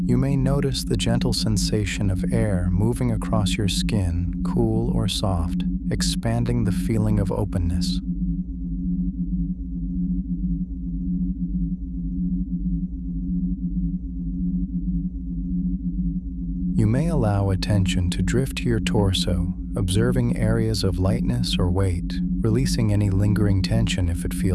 You may notice the gentle sensation of air moving across your skin, cool or soft, expanding the feeling of openness. You may allow attention to drift to your torso, observing areas of lightness or weight, releasing any lingering tension if it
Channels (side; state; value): both; identical; correlation 1.00